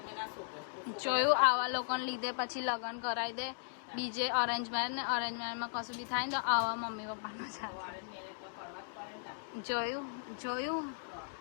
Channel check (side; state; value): right; silent; digital silence